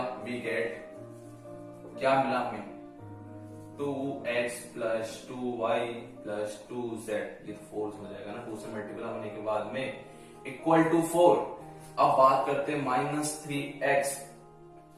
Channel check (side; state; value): both; identical; correlation 1.00